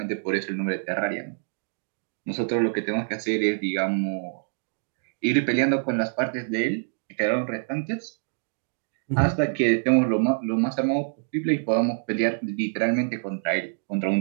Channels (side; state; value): left; silent; digital silence